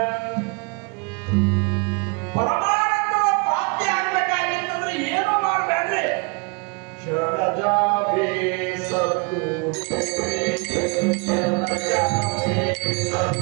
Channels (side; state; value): left; quieter; 31.3 dB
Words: ಪರಮಾನಂದದ ಪ್ರಾಪ್ತಿ ಆಗಬೇಕಾಗಿತ್ತಂದ್ರೆ ಏನು ಮಾಡಬೇಡ್ರಿ, ಶರಣಜಾವೇ ಸದ್ಗುರು